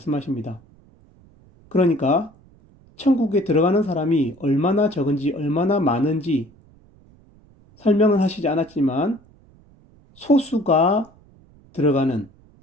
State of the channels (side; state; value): right; noise; rumble, 28 dB below the sound